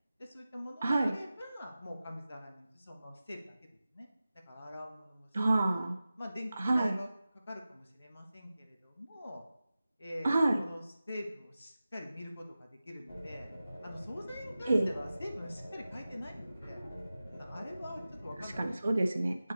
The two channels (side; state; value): both; inverted; correlation -0.95